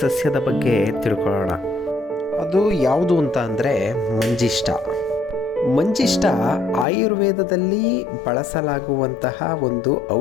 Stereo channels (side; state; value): right; drops out; at 6.9 s